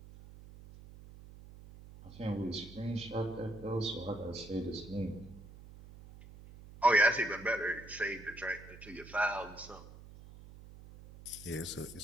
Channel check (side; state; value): right; noise; hum, 17 dB below the sound